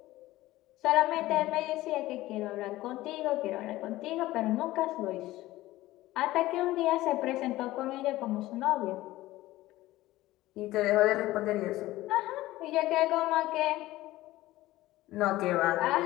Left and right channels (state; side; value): quieter; right; 16.9 dB